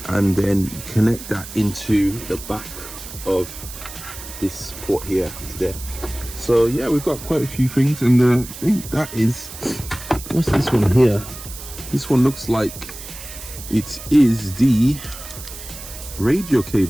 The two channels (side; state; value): right; noise; hiss, 13 dB below the sound